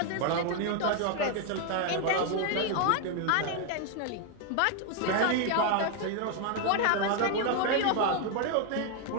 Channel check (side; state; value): both; different; correlation 0.01